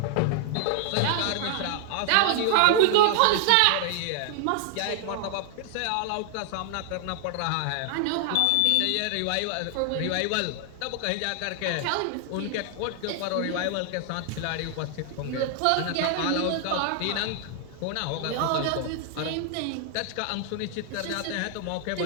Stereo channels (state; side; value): different; both; correlation 0.00